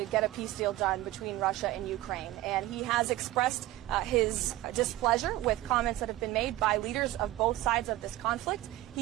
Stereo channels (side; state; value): left; quieter; 16.2 dB